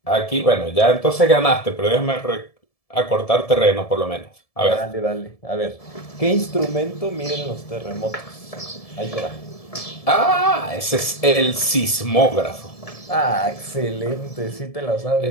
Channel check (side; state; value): right; late; 1.7 ms